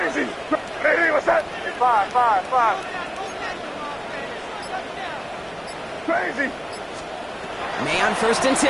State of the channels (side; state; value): both; identical; correlation 1.00